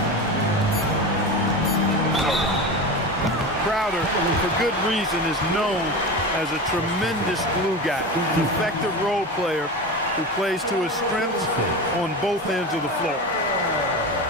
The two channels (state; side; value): normal; both; correlation 0.26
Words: Crowder, for good reason, is known as a tremendous glue guy, an effective role player who plays to his strengths on both ends of the floor.